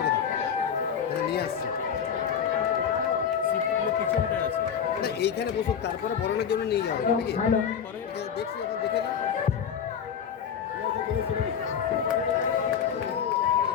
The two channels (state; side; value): quieter; right; 7.9 dB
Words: দাও, তাহলে নিয়ে আসছি। সিটগুলো পিছনটায় আছে না, এইখানে বসুক, তারপরে বরণের জন্য নিয়ে যাবো নাকি? পরে দেখছি, এখন দেখে দাও।